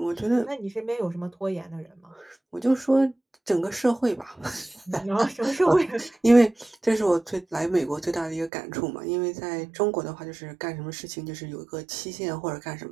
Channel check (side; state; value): left; drops out; at 8.5 s